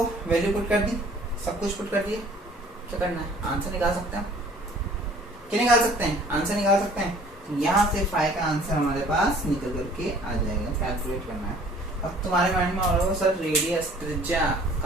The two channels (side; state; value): both; normal; correlation 0.53